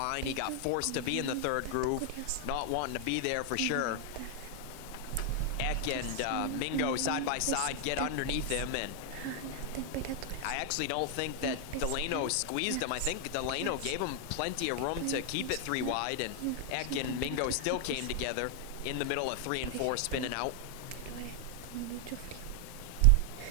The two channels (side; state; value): both; different; correlation 0.00